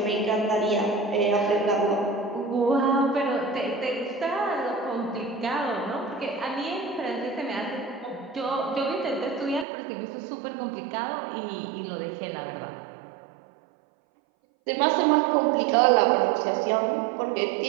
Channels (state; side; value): drops out; left; at 9.7 s